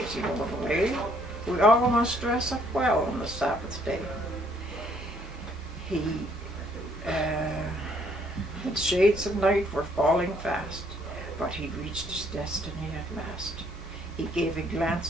as he rode away, we all must dress up well on the Sabbath day. The shades of night were falling fast, but he'd reached his destiny at last. He gave a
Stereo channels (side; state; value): both; normal; correlation 0.66